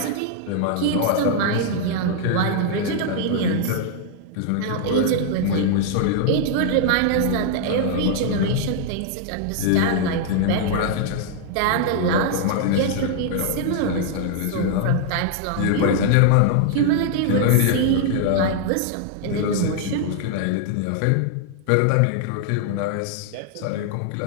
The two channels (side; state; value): both; different; correlation 0.00